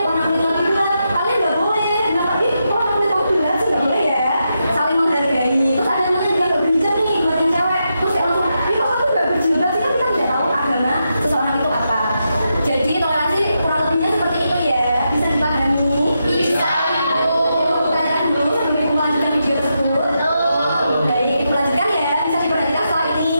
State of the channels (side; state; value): both; inverted; correlation -0.85